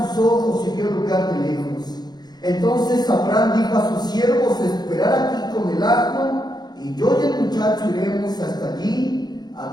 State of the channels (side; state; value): right; late; 0.20 ms